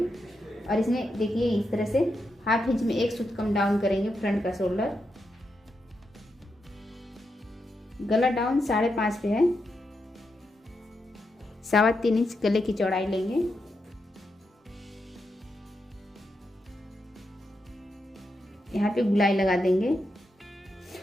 और इसमें देखिए इस तरह से ½ इंच में 1 सूत कम डाउन करेंगे फ्रंट का शोल्डर। गला डाउन 5.5 पे है, 3.25 इंच गले की चौड़ाई लेंगे। यहाँ पे गुलाई लगा देंगे,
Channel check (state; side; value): normal; both; correlation 0.85